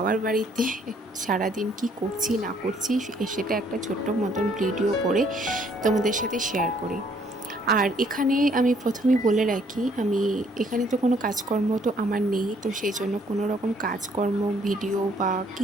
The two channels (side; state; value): both; normal; correlation 0.64